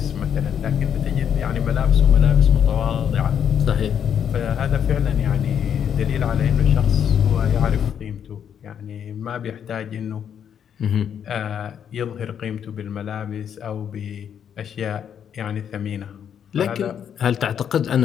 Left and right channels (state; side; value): quieter; right; 8.5 dB